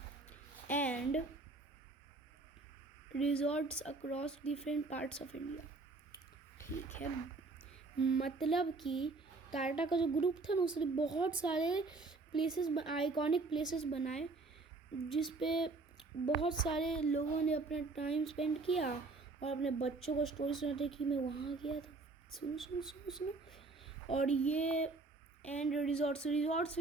and resorts across different parts of India, ठीक है। मतलब कि टाटा का जो ग्रुप था ना, उसने बहुत सारे प्लेसेस, आइकॉनिक प्लेसेस बनाए, जिस पे बहुत सारे लोगों ने अपना टाइम स्पेंड किया और अपने बच्चों को स्टोरी सुनाते कि मैं वहाँ गया था, सुनो सुनो सुनो सुनो। और ये एंड रिजॉर्ट्स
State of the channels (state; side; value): quieter; left; 3.6 dB